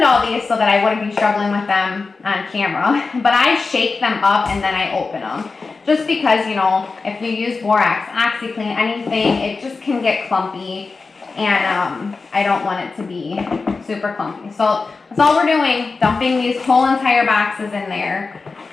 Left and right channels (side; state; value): right; quieter; 4.2 dB